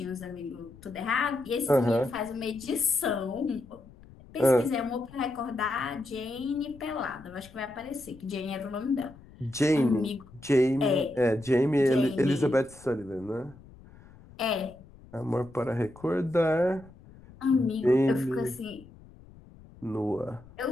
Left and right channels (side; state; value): left; noise; rumble, 22 dB below the sound